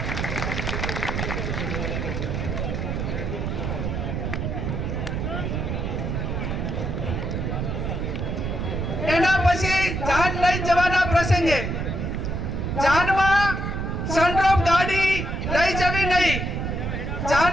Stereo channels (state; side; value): noise; right; rumble, 2 dB below the sound